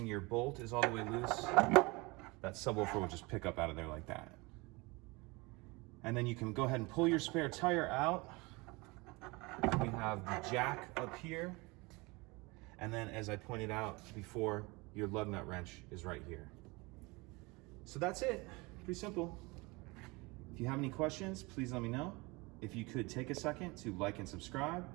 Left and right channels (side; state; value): left; quieter; 25.2 dB